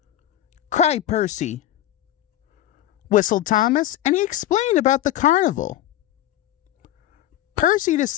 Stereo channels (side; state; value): right; quieter; 12.8 dB